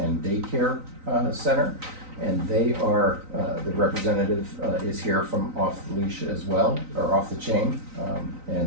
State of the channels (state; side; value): late; left; 3.9 ms